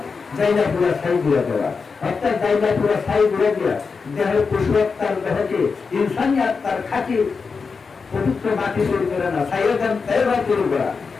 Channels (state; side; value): quieter; right; 5.0 dB